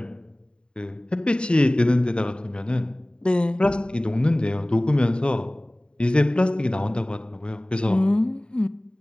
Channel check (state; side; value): late; right; 0.050 ms